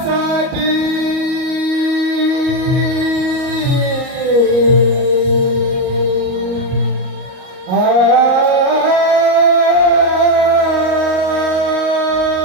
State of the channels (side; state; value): left; late; 38 ms